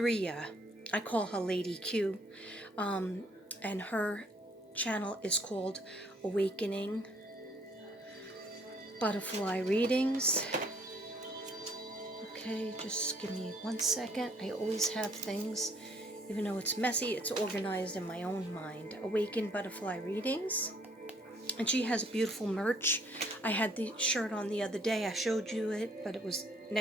I call her Lady Q. And her channel is called Awakening Butterfly Readings. Okay, just give me 1 second. I always have things, even though it's messy, it's organized in my own mind. Awaken Butterfly Readings. And she has beautiful merch. I had the shirt on the other day. I showed you it, but it was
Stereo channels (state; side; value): normal; both; correlation 0.63